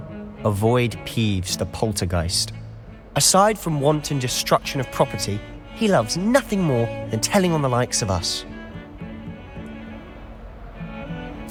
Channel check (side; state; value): both; identical; correlation 1.00